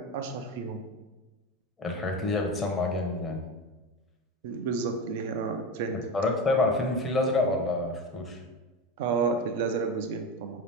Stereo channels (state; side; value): normal; both; correlation 0.22